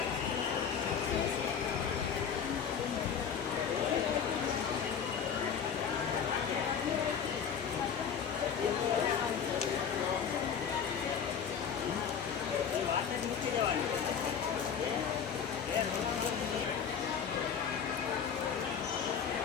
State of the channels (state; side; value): quieter; right; 7.3 dB